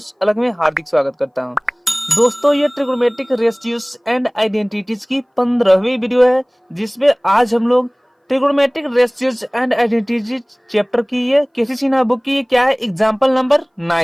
अलग में हार्दिक स्वागत करता हूं। दोस्तों, ये ट्रिग्नोमेट्रिक रेशियोज एंड आइडेंटिटीज की 15वीं वीडियो है, जिसमें आज हम लोग trigonometric ratios and identities chapter की ये केसी सिन्हा बुक की क्या है, एग्जाम्पल नंबर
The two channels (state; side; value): identical; both; correlation 1.00